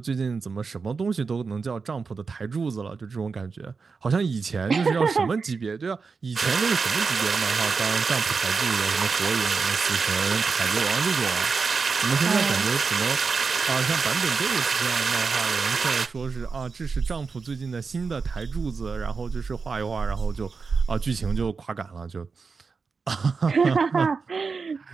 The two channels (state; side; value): quieter; left; 4.9 dB